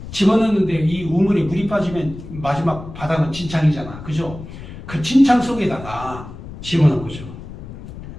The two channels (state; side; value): noise; left; rumble, 13 dB below the sound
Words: 집어넣는데 이 우물에 물이 빠지면 마지막 바닥은 진창이잖아, 그죠? 그 진창 속에다가 집어넣은 거죠.